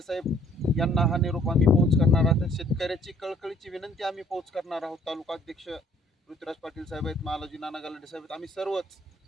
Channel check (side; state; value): both; normal; correlation 0.61